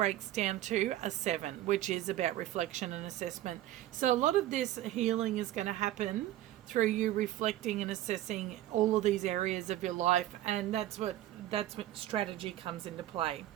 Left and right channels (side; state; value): left; quieter; 13.9 dB